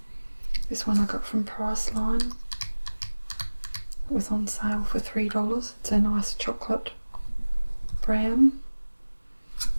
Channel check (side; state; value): both; inverted; correlation -1.00